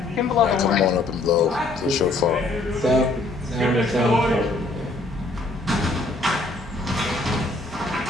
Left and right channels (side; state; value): right; quieter; 3.0 dB